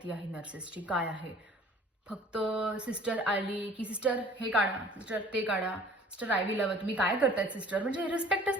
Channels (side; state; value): both; normal; correlation 0.50